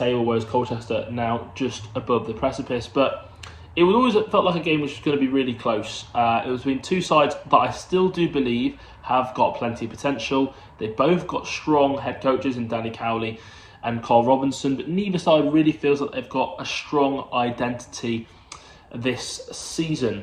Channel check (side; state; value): both; identical; correlation 1.00